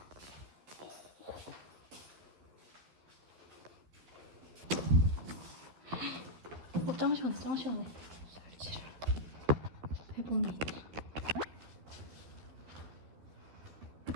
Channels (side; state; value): left; late; 12 ms